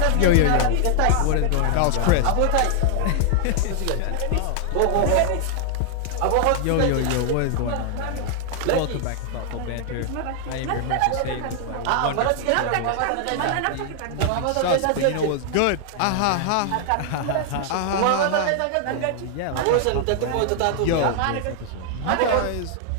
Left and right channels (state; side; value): different; both; correlation 0.00